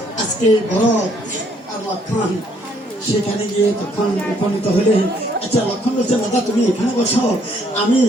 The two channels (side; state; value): both; normal; correlation 0.67